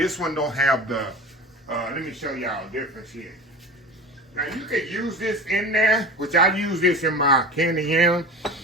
one don't have the, let me show y'all the difference here. Now, you could use this in there, which I use this in my candied yam,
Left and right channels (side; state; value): both; normal; correlation 0.33